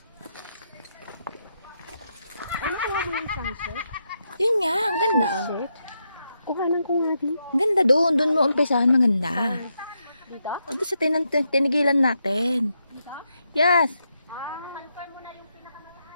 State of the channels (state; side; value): inverted; both; correlation -0.82